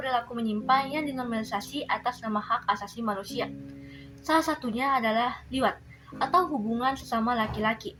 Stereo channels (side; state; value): both; identical; correlation 1.00